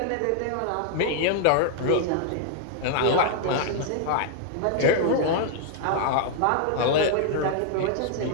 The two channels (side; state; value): both; different; correlation 0.00